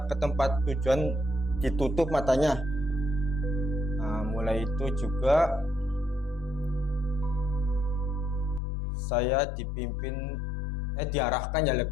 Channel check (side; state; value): right; drops out; at 8.6 s